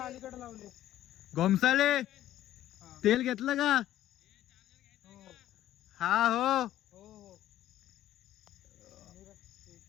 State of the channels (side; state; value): right; quieter; 13.0 dB